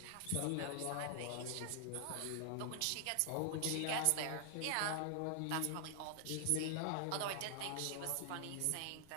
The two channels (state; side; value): different; both; correlation 0.00